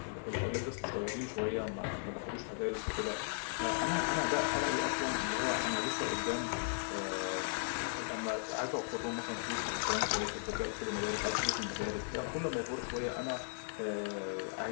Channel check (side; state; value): right; silent; digital silence